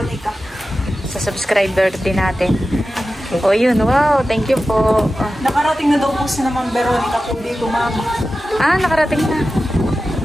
Sa subscriber din natin. O yun, wow, thank you po. Nakarating na daw po si naman Veronica po dito, ma'am. Nakarating na.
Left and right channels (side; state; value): both; normal; correlation 0.94